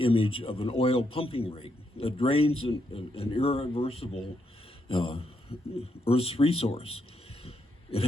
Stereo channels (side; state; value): both; normal; correlation 0.79